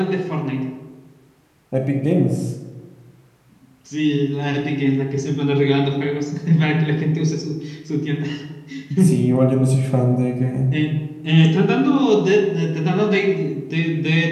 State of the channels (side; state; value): both; identical; correlation 1.00